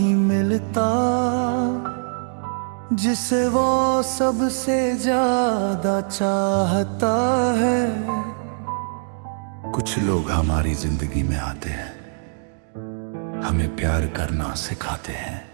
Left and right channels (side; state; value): left; silent; digital silence